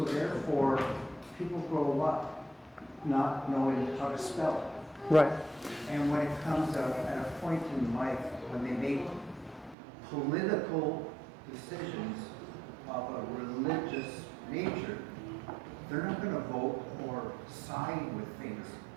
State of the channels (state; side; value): drops out; left; at 9.8 s